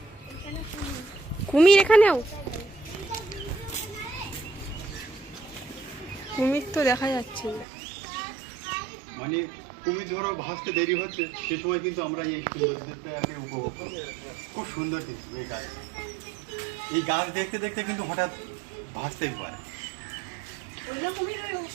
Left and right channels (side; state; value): left; drops out; at 7.7 s